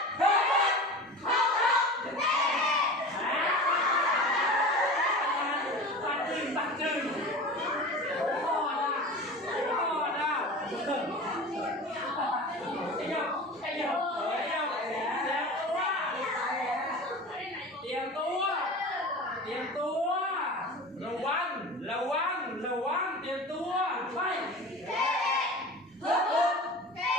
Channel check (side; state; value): both; normal; correlation 0.34